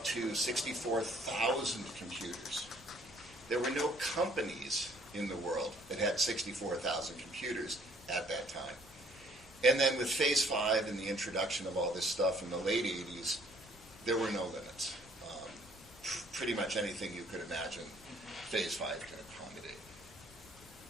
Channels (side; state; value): both; normal; correlation 0.60